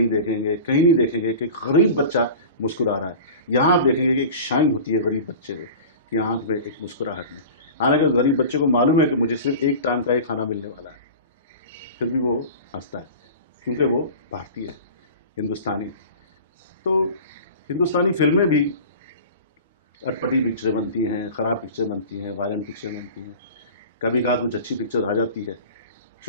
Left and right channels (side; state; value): both; inverted; correlation -0.36